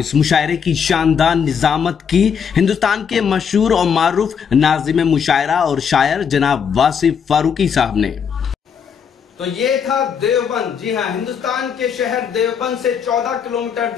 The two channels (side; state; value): right; quieter; 7.1 dB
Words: مشاعرے کی شاندار نظامت کی ہندوستان کے مشہور اور معروف ناظم مشاعرہ اور شاعر جناب واصف فاروقی صاحب نے۔ تو یہ تھا دیوبند، جی ہاں، ہندوستان کے شہر دیوبند سے 14 کلومیٹر